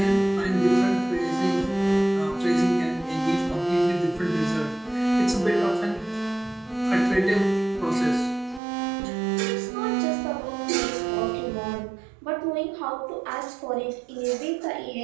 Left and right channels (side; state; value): left; drops out; at 8.6 s